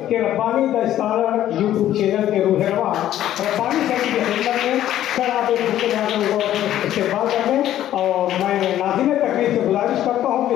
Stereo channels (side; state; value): right; quieter; 12.3 dB